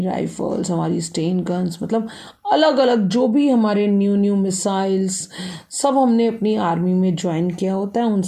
राइफल्स, हमारी स्टेन गन्स, मतलब अलग अलग जो भी हमारे न्यू मिसाइल्स सब हमने अपनी आर्मी में ज्वाइन किया होता है, उन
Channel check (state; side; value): identical; both; correlation 1.00